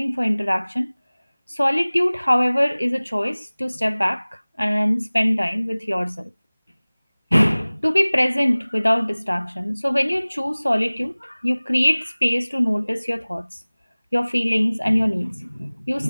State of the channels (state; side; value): inverted; both; correlation -1.00